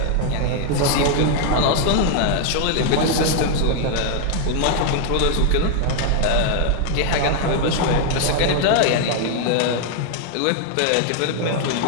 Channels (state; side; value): different; both; correlation 0.00